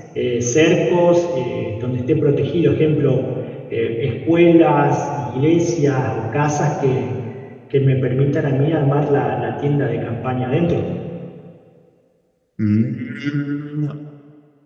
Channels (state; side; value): identical; both; correlation 1.00